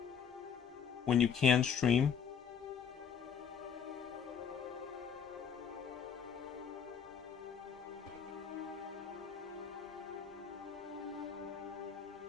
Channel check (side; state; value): right; quieter; 7.2 dB